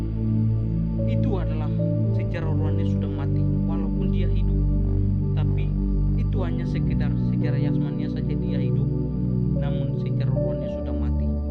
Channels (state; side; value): identical; both; correlation 1.00